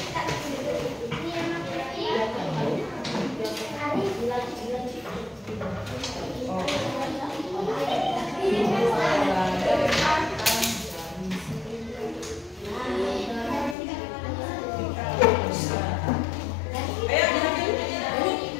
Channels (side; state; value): right; drops out; at 13.8 s